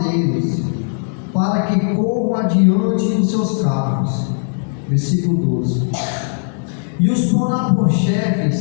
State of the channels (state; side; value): silent; right; 65 dB below the other